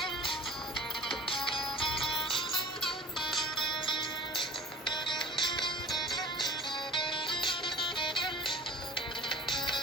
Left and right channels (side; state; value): both; normal; correlation 0.42